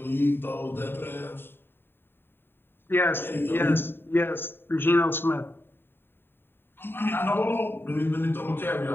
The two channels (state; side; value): late; right; 0.10 ms